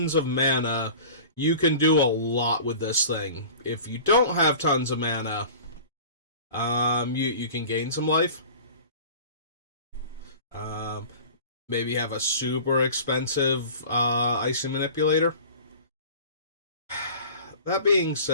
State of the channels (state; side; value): inverted; both; correlation -0.41